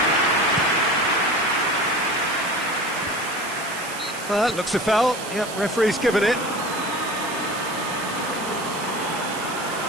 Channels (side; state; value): right; noise; hiss, 12 dB below the sound